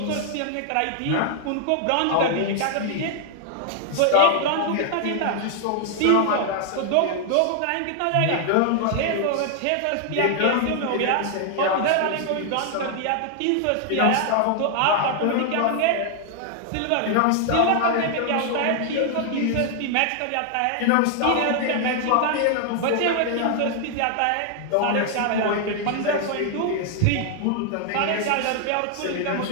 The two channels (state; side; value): different; both; correlation 0.00